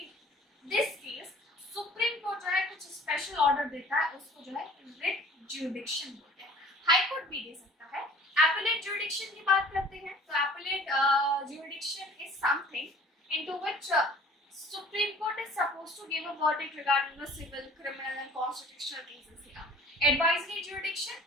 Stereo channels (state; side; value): normal; both; correlation 0.49